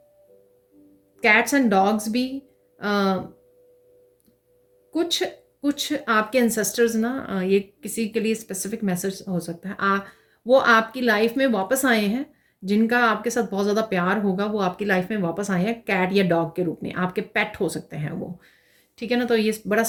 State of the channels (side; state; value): both; identical; correlation 1.00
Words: कैट्स एंड डॉग्स भी कुछ कुछ आपके एंसेस्टर्स ना, ये किसी के लिए स्पेसिफिक मैसेज हो सकता है, वो आपकी लाइफ में वापस आए हैं, जिनका आपके साथ बहुत ज़्यादा प्यार होगा वो आपकी लाइफ में वापस आए हैं कैट या डॉग के रूप में, आपके पेट हो सकते हैं वो, ठीक है ना। तो ये बड़ा